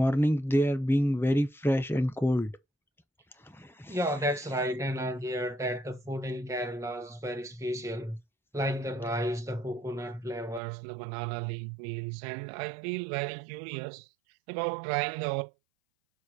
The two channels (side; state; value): left; drops out; at 10.6 s